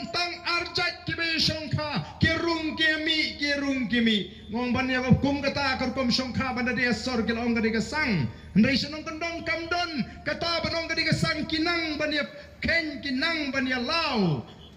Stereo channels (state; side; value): identical; both; correlation 1.00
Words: tang arjat kibe songkha kerung kemi ngong ban ya kum kata kerkom songkha banda dia sor kelong gadi kesang ndai senong kendong kamdon kata banong gadi kesang kinang ban ya ken kinang ban ya lau